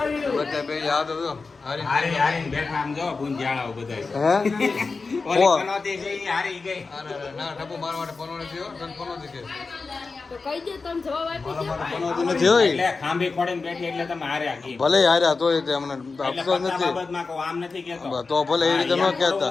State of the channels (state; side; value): quieter; right; 4.2 dB